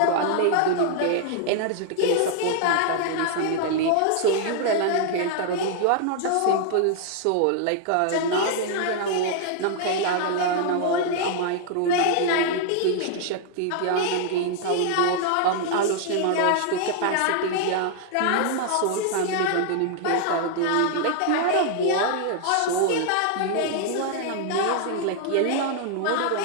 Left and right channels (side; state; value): both; different; correlation 0.00